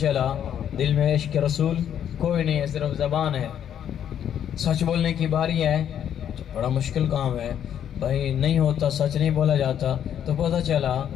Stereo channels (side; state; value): right; quieter; 9.6 dB